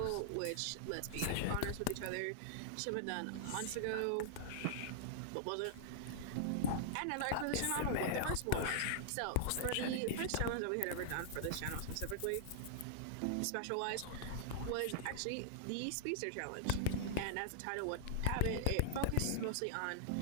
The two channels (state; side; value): different; both; correlation -0.02